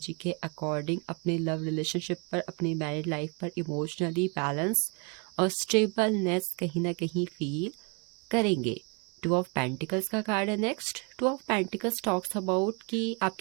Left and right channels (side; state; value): left; quieter; 33.0 dB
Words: के अकॉर्डिंग अपने लव रिलेशनशिप पर, अपनी मैरिड लाइफ पर इमोशनली बैलेंस और स्टेबलनेस कहीं ना कहीं फील करेंगे। 2 ऑफ पेंटिकल्स का कार्ड है next. 2 of pentacles talks about कि